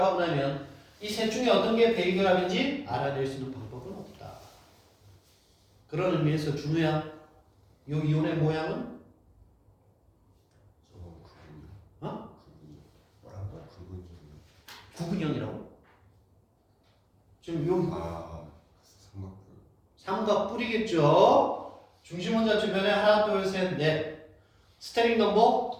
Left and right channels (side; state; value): both; identical; correlation 1.00